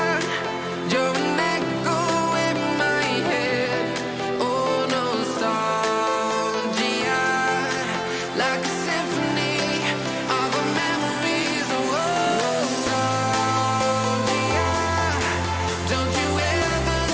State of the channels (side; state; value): both; identical; correlation 1.00